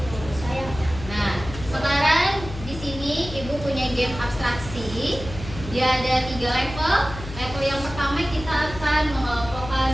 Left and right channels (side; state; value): left; noise; hum, 11 dB below the sound